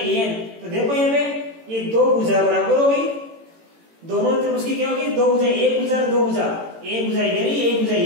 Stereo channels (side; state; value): left; late; 18 ms